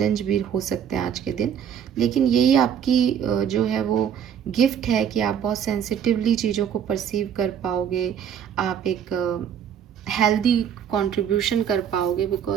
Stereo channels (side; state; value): left; quieter; 8.7 dB